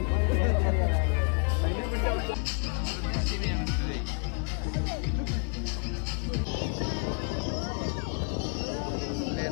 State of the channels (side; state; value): right; quieter; 38.8 dB